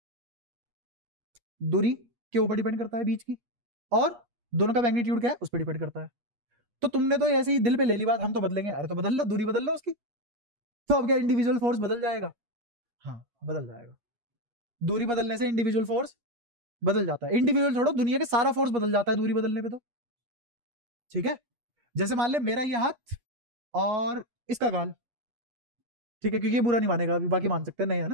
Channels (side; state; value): left; late; 8.4 ms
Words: दूरी के ऊपर डिपेंड करता है बीच की, और दोनों का मैग्नीट्यूड क्या है उस पर डिपेंड करता है। तो तुमने तो ऐसे ही दिल पे ले ली बात, हम तो बदलेंगे। अरे तो बदल लो, दूरी बदल लो उसकी, तो अब क्या इंडिविजुअल फोर्स बदल जाएगा? हाँ बदल जाएगा। दूरी बदलने से इंडिविजुअल फोर्स बदल जाता है। इंडिविजुअल छोड़ो, दुनिया के सारा फोर्स बदल जाता है दूरी बदलने पे तो। ठीक है, जैसे मान ले मेरा ये हाथ और इसका गाल, ठीक है, क्योंकि ये बुरा नहीं मानेगा अभी, बाकी मान सकते हैं, नहीं है